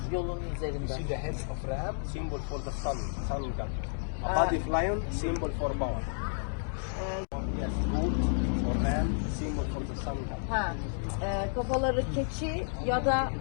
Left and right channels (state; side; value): silent; right; digital silence